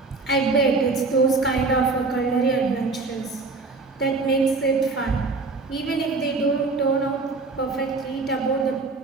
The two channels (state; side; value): quieter; left; 3.8 dB